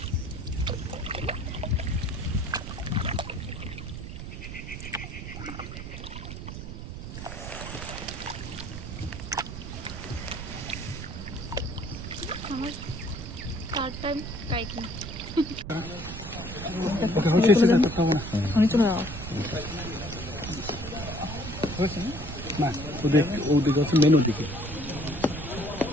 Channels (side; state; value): right; noise; rumble, 8 dB below the sound